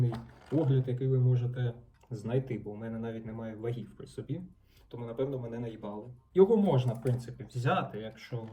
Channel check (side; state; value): both; identical; correlation 1.00